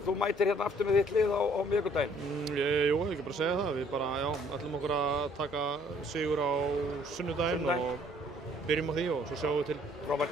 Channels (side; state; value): both; normal; correlation 0.61